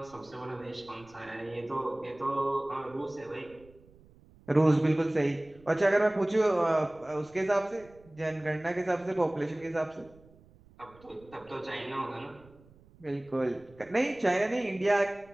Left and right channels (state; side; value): noise; right; rumble, 26 dB below the sound